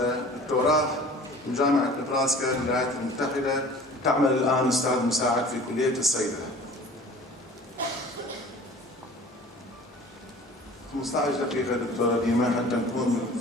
دكتوراه من جامعة نبراسكا بالولايات المتحدة. تعمل الآن أستاذ مساعد في كلية الصيدلة. 15 دقيقة دكتورة ديما حتى نكون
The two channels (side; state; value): both; normal; correlation 0.45